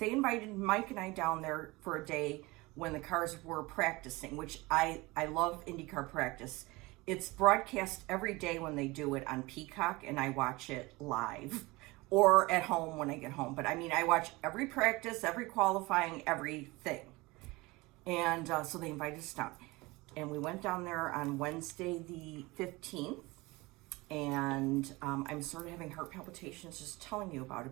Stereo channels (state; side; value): quieter; left; 22.6 dB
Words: invited Mike and I down there for a day when the cars were practicing, which I love IndyCar practice. It's broadcast every day when they do it on Peacock, and I watch it live or at home when I get home. But I mean, I watch every practice, every qualifying, everything. And so they invited us down. And we went down there on Wednesday the 15th. And I'm sort of having heart palpitations just telling you about